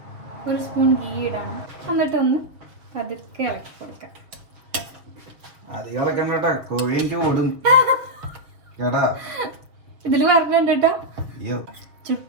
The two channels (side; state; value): left; late; 6.5 ms